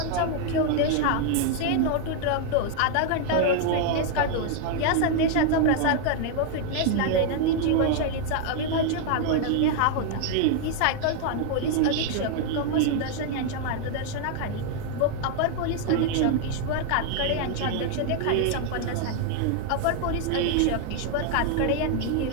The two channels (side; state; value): both; different; correlation 0.00